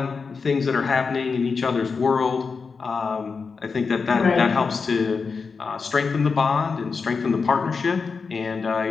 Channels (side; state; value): right; quieter; 5.0 dB